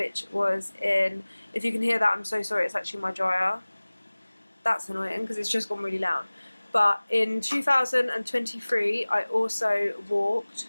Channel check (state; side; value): inverted; both; correlation -1.00